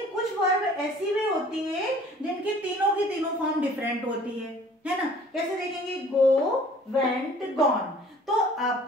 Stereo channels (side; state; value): both; normal; correlation 0.52